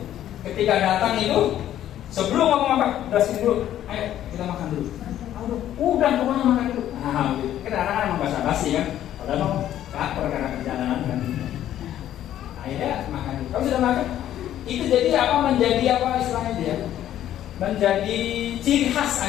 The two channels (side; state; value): right; quieter; 11.8 dB